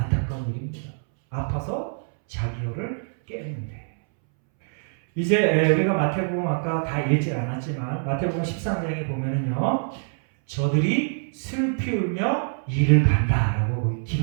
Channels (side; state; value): left; silent; 62 dB below the other